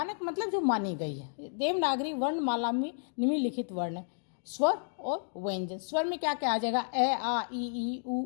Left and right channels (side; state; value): right; silent; digital silence